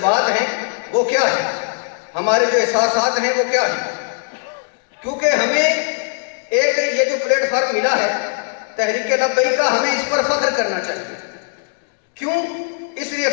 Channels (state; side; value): silent; right; 66 dB below the other